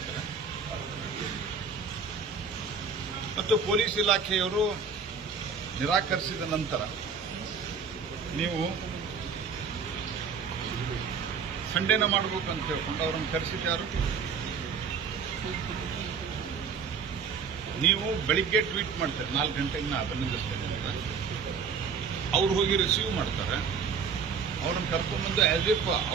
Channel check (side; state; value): left; quieter; 5.7 dB